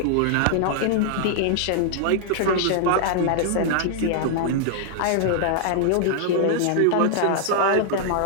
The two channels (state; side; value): different; both; correlation -0.01